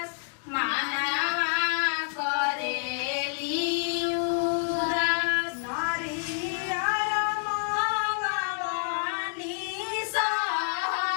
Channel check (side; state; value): right; silent; digital silence